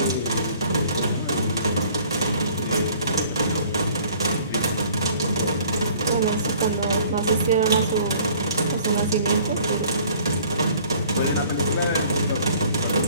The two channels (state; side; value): inverted; both; correlation -0.54